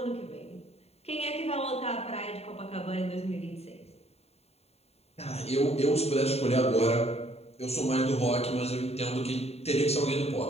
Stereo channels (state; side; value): late; right; 0.30 ms